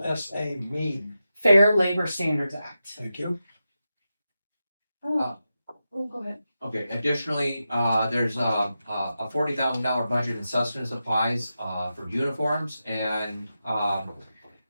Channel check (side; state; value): both; inverted; correlation -0.90